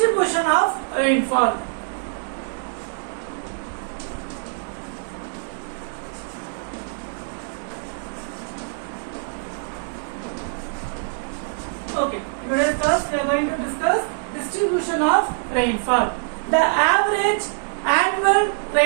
of rainfall. Okay, in today's class, we are going to discuss distribution of rainfall. The average annual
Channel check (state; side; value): silent; left; digital silence